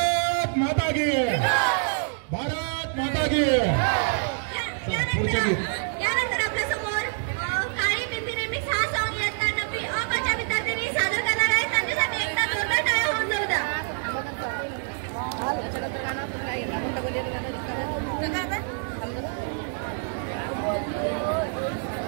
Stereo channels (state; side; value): silent; left; 61 dB below the other